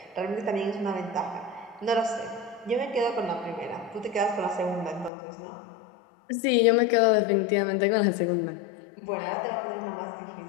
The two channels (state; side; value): drops out; right; at 5.1 s